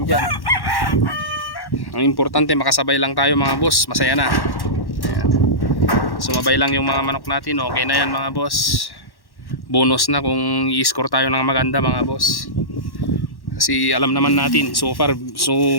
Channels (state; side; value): late; right; 1.1 ms